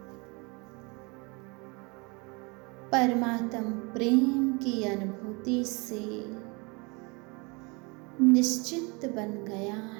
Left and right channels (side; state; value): left; quieter; 29.0 dB